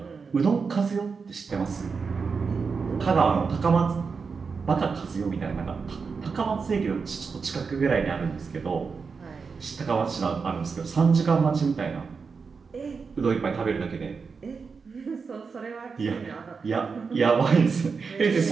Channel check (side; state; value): left; quieter; 5.2 dB